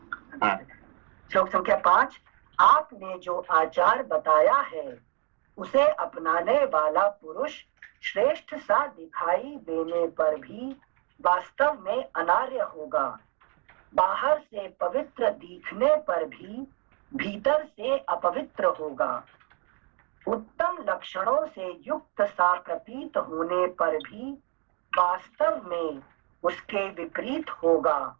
श्लोक संख्या 5। आपने जो आचार बताया है उसे अपनाने वाला पुरुष श्रेष्ठ सा दिखाई देने पर भी वास्तव में अनार्य होगा, बाहर से पवित्र दिखने पर भी भीतर से अपवित्र होगा, उत्तम लक्षणों से युक्त सा प्रतीत होने पर भी वास्तव में उसके विपरीत होगा,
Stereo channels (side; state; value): left; quieter; 34.5 dB